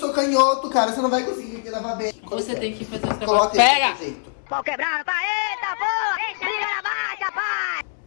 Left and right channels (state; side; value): silent; right; 64 dB below the other